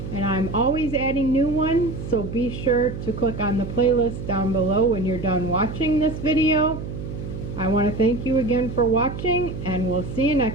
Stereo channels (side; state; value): right; noise; hum, 8 dB below the sound